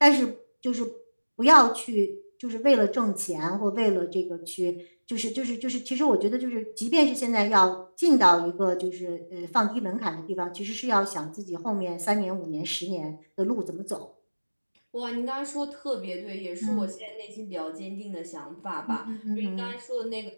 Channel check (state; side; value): inverted; both; correlation -1.00